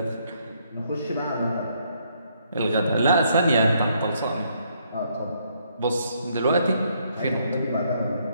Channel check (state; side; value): inverted; both; correlation -0.71